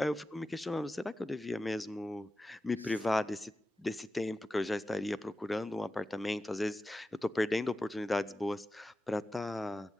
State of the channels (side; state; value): both; normal; correlation 0.93